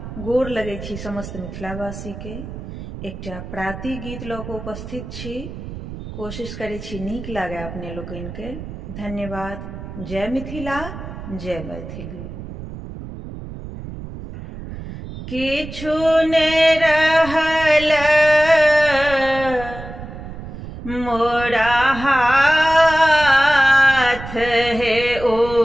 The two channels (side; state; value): right; noise; rumble, 11 dB below the sound